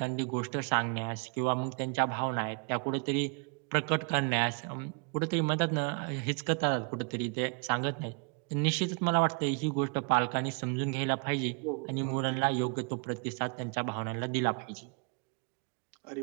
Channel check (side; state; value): left; quieter; 37.4 dB